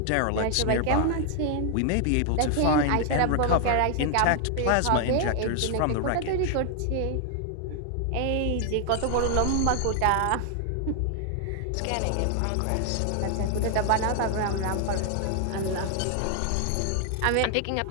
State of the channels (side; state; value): both; different; correlation 0.00